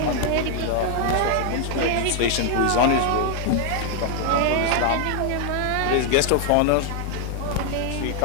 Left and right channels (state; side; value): different; both; correlation 0.00